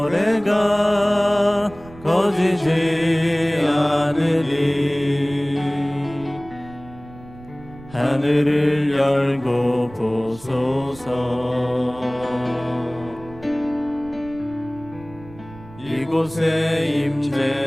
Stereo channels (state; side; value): noise; right; rumble, 19 dB below the sound